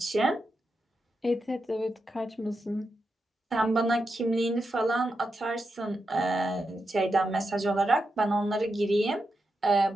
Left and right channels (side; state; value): both; normal; correlation 0.87